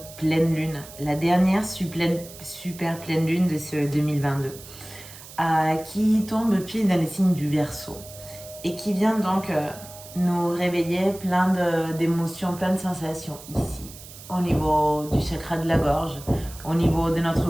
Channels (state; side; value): noise; right; hiss, 17 dB below the sound